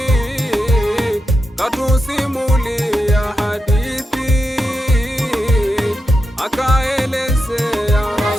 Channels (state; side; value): normal; both; correlation 0.87